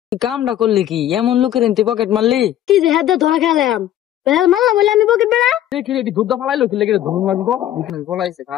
কামটা করলি কি এমন লোকের তুই পকেট মারলি কি যে হাত ধরা খেলাম মারলাম বলে আমি পকেট বেড়া দেখি এটি দুধ ফালাইলো কি লেগে ধুম মারবো ফলাইছে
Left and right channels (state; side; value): quieter; right; 12.1 dB